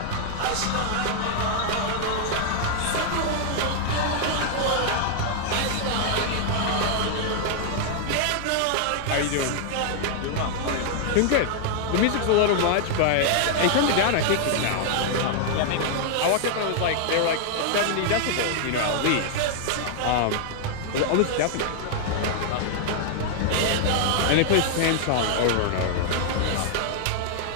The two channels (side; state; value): both; different; correlation 0.00